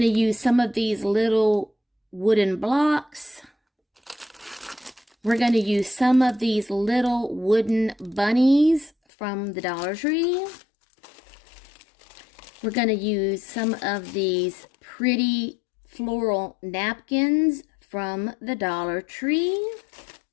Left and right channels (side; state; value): right; drops out; at 8.9 s